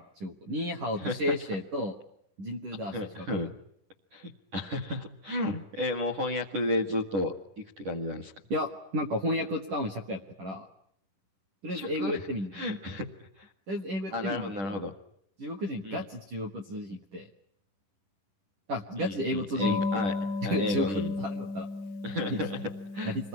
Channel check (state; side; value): late; left; 10 ms